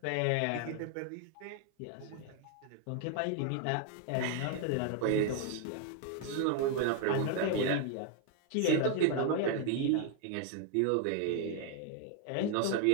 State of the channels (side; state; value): both; different; correlation 0.00